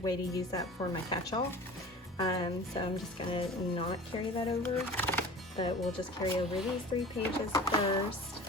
way to use that for my catch-all, so I'm just going to not carry that over. But we'll just carry over these 3 pages first.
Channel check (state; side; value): normal; both; correlation 0.39